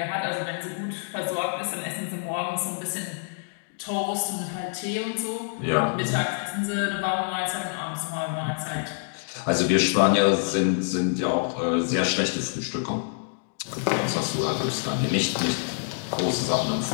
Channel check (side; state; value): right; silent; digital silence